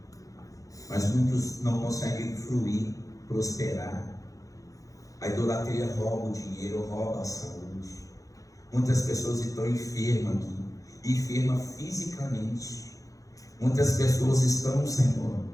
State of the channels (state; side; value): late; right; 0.16 ms